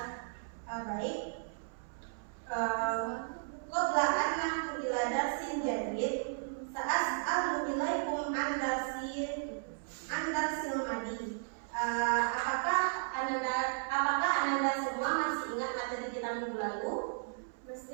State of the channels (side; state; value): left; silent; 55 dB below the other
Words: Baik. Qabla an nahdu ila darsin jadid, sa'as'alu ilaikum an darsil madi. Apakah Ananda semua masih ingat materi kita minggu lalu?